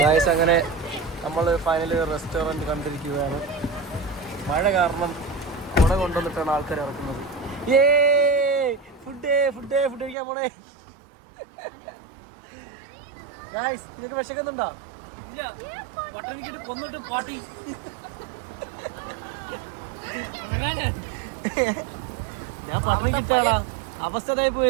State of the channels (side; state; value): left; drops out; at 10.2 s